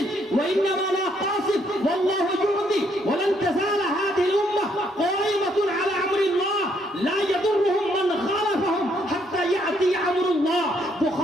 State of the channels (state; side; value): normal; both; correlation 0.71